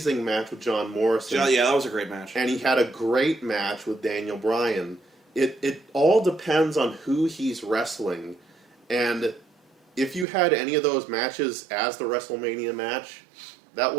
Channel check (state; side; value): drops out; left; at 10.2 s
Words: match with John Morrison. Yeah, that was a great match. And he had a great match with Daniel Bryan. It all depends on who he's wrestling. And if you had any of those matches as the WrestleMania match, that